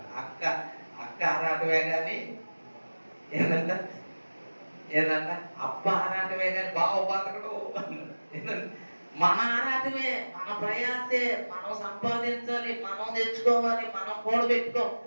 అక్క ఆరాటమే కానీ ఏంటంట అప్ప ఆరాటమే కానీ బావ బతకడు. మన ఆరాటమే, మన ప్రయాసే, మనం సంపాదించాలి, మనం తెచ్చుకోవాలి, మనం కూడబెట్టుకో,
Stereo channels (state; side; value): inverted; both; correlation -1.00